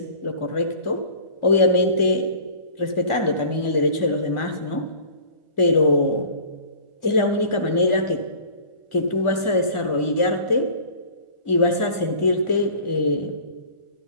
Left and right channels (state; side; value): late; right; 2.2 ms